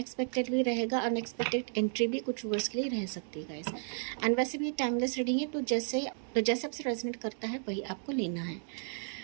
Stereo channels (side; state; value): left; silent; digital silence